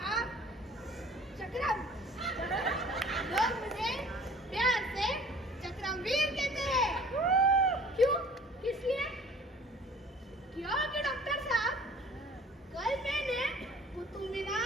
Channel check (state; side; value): normal; both; correlation 0.50